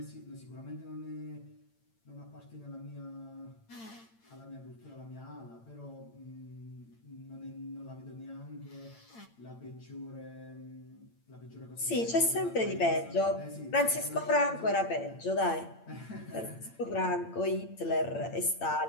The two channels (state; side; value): late; right; 8.8 ms